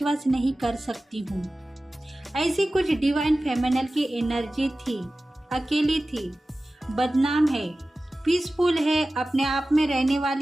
नहीं कर सकती हूँ। ऐसी कुछ डिवाइन फेमिनल की एनर्जी थी, अकेली थी, बदनाम है, पीसफुल है, अपने आप में रहने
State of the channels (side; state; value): both; normal; correlation 0.96